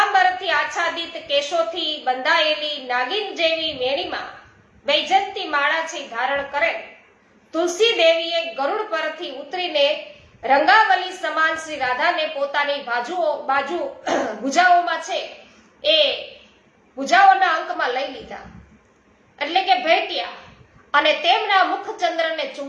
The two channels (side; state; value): both; identical; correlation 1.00